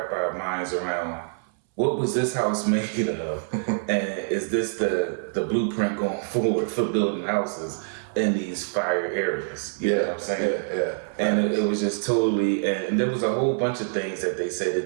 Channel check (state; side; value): silent; left; 61 dB below the other